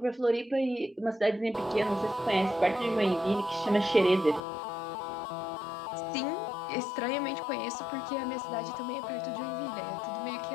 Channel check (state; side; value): drops out; right; at 4.4 s